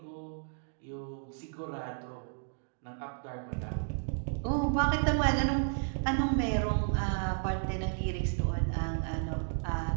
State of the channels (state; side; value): silent; left; digital silence